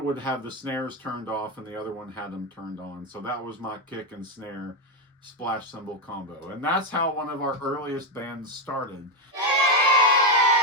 would have the snares turned off and the other one had them turned on. So that was my kick and snare splash cymbal combo. And that's how one of our earliest bands started.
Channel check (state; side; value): normal; both; correlation 0.07